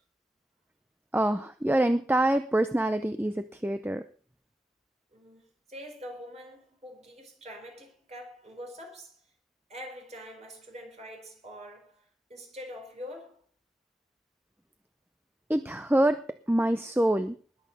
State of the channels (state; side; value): normal; both; correlation 0.91